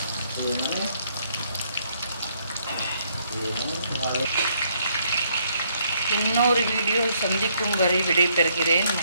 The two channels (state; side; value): inverted; both; correlation -0.69